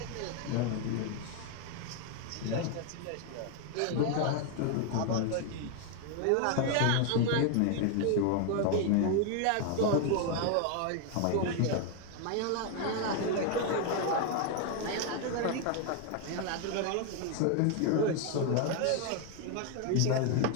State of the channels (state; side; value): different; both; correlation 0.01